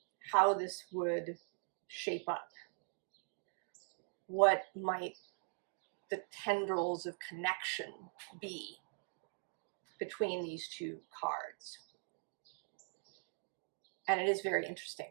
how this would shape up. What might the tendrils of connection be between these two cards. And it is very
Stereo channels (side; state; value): left; silent; 50 dB below the other